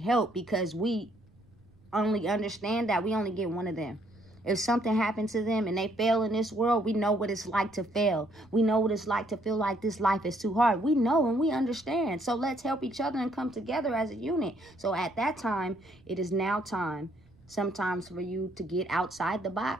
because we only understand that we only get one of them. If something happened to them and they fail in this world, we know what it's like to fail. We know what it's like to feel like this life is too hard. We know and we understand. So let's help each other and come together as a unit. So at that time, it is now time sometimes for you to get outside the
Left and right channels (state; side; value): noise; right; rumble, 29 dB below the sound